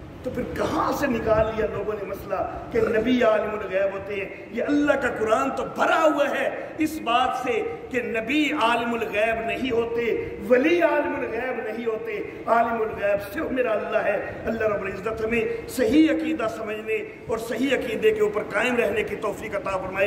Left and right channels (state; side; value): identical; both; correlation 1.00